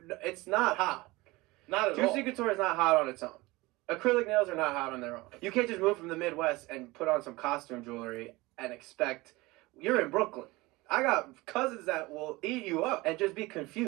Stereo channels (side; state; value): left; quieter; 21.6 dB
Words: It's not hot. Not at all. Juicy Couture is not hot on its own. Acrylic nails are not hot on their own. You can't just move from the Midwest and put on some costume jewelry and expect... You're in Brooklyn. I got cousins that will eat you up and just be